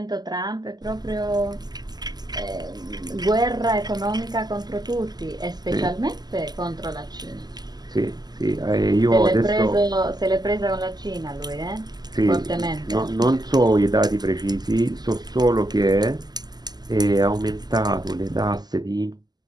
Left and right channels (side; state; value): left; late; 0.20 ms